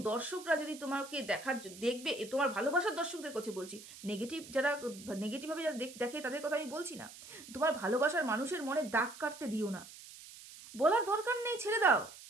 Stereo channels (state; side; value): noise; right; hiss, 16 dB below the sound